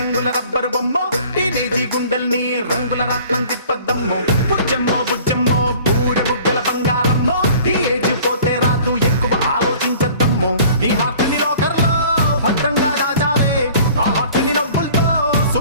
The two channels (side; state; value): both; inverted; correlation -0.49